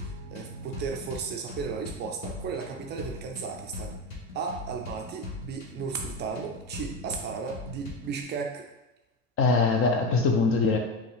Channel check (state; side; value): normal; both; correlation 0.18